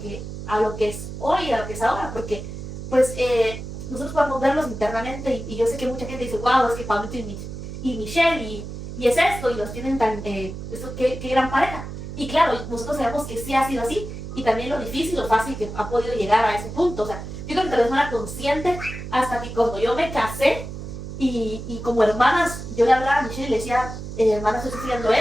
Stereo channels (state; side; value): noise; right; hum, 9 dB below the sound